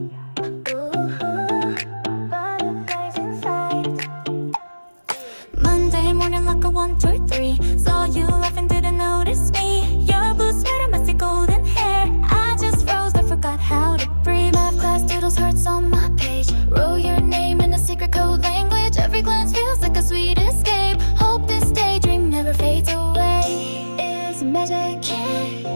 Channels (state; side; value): inverted; both; correlation -1.00